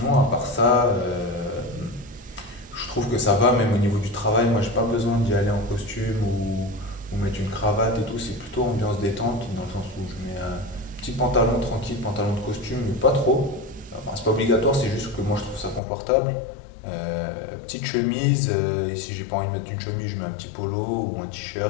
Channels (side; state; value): right; drops out; at 15.8 s